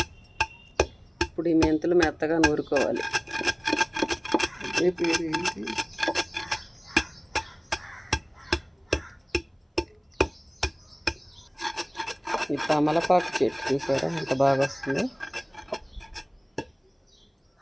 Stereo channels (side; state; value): both; identical; correlation 1.00